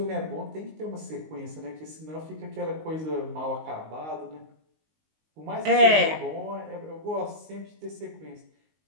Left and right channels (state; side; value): late; left; 19 ms